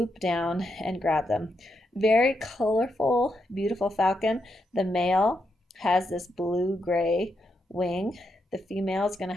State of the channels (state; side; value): normal; both; correlation 0.82